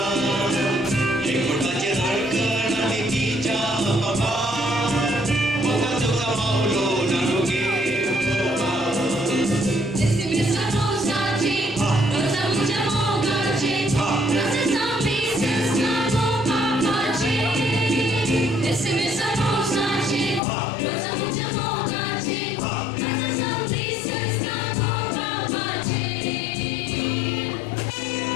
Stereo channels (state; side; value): drops out; right; at 20.4 s